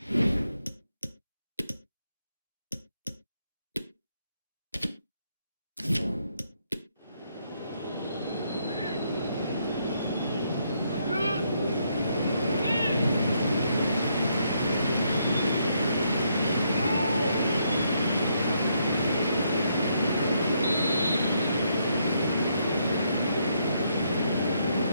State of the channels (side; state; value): both; inverted; correlation -0.75